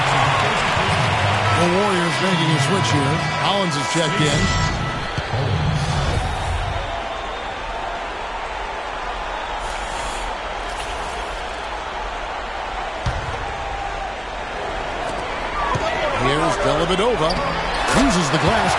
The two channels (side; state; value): both; identical; correlation 1.00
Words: The Warriors making a switch here. Collins is checked in. Here's Dellavedova. Uses the glass